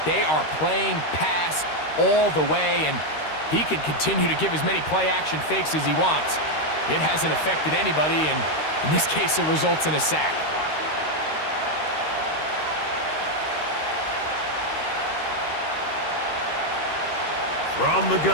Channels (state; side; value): late; right; 13 ms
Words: They are playing pass all the way, and he can continue to give as many play-action fakes as he wants. It hasn't affected anybody, and in this case, it results in a sack. From the